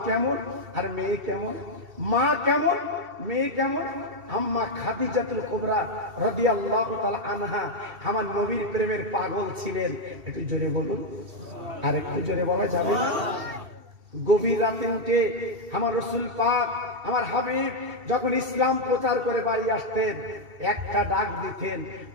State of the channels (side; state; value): left; late; 2.7 ms